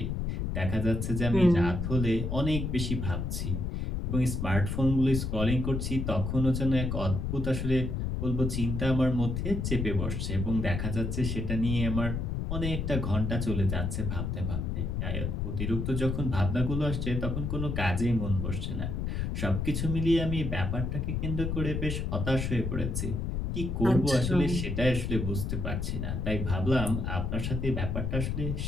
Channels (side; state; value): left; noise; rumble, 2 dB below the sound